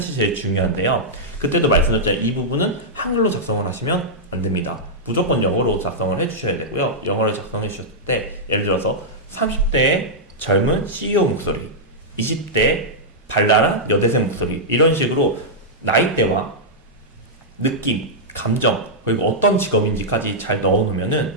제일 중요한데요. 그때도 말씀드렸잖아요. 이 부분은 한글로 작성을 하시면 안 됩니다. 무조건 영어로 작성을 해주셔야 되고요. 영어를 작성해 주셨을 때 예를 들어서 30대의 젊은 CEO 목소리, 20대 발랄한 여대생 목소리, 이런 식으로 나이대와 느낌, 감정, 그리고 어떤 직업인지까지 잘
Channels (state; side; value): normal; both; correlation -0.08